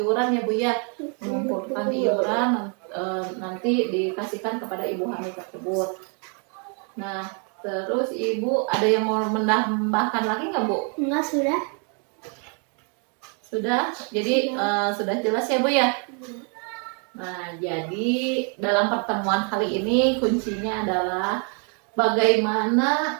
ya Bu ya, mengumpulkan iuran nanti dikasihkan kepada ibu hamil tersebut. Nah, terus ibu ada yang mau menambahkan lagi nggak Bu? Enggak, sudah. Sudah, jadi sudah jelas ya Bu ya. Nah, jadi dalam pertemuan kali ini kuncinya adalah bagaimana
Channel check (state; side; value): quieter; left; 39.1 dB